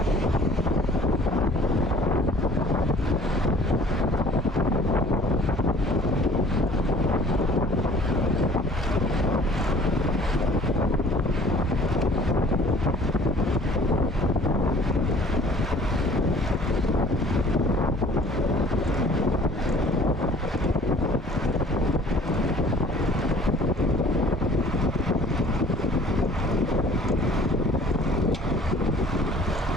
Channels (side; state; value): both; normal; correlation 0.51